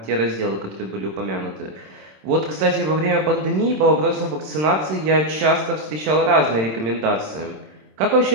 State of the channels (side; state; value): left; late; 27 ms